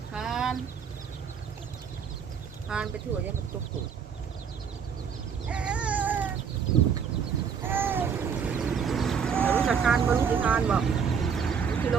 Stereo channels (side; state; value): left; quieter; 6.8 dB